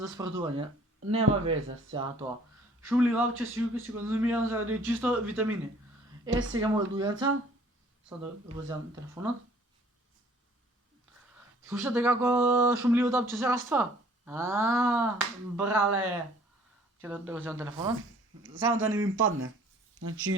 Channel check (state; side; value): normal; both; correlation 0.55